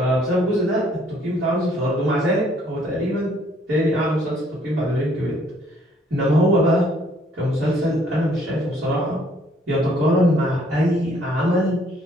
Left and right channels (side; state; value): both; normal; correlation 0.63